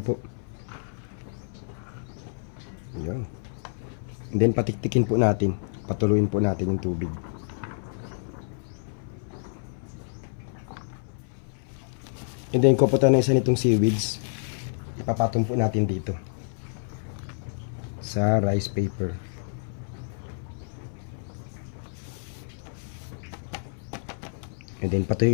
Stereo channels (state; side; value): silent; right; 58 dB below the other